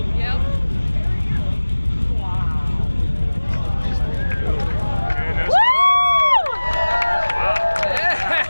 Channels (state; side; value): inverted; both; correlation -1.00